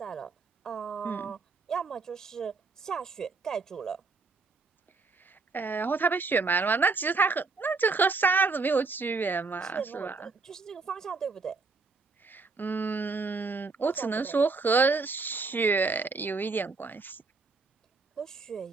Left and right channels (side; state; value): left; quieter; 4.2 dB